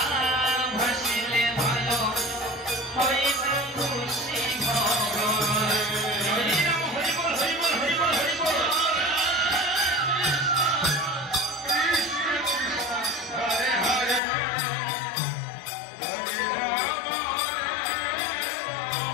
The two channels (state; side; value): drops out; right; at 14.2 s